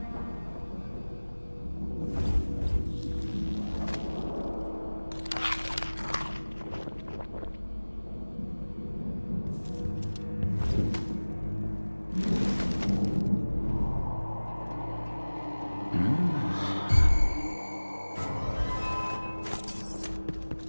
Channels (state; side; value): inverted; both; correlation -1.00